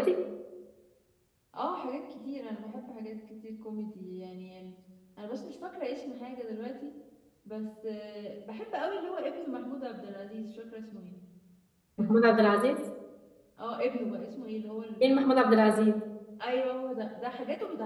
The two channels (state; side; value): identical; both; correlation 1.00